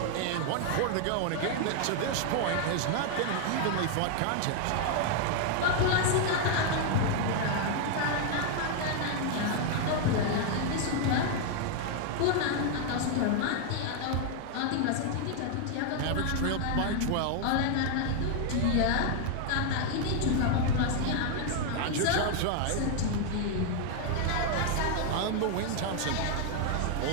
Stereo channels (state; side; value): different; both; correlation 0.00